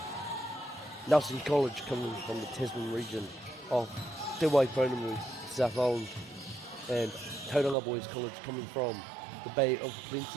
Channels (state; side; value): drops out; left; at 7.8 s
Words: Nelson College coming from the Tasman region of Te Waipounamu, South Island, and Tauranga Boys College coming from the Bay of